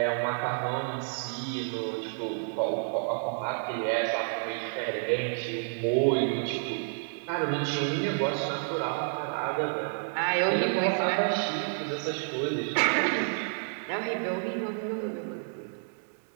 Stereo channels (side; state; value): left; silent; digital silence